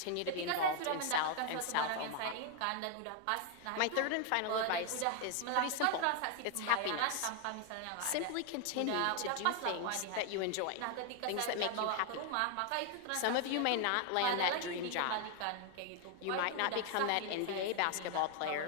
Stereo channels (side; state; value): both; different; correlation 0.00